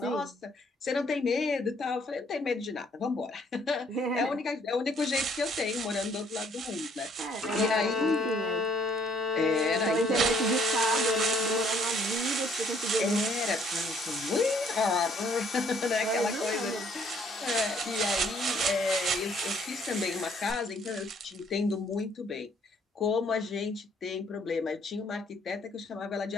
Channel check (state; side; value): normal; both; correlation 0.64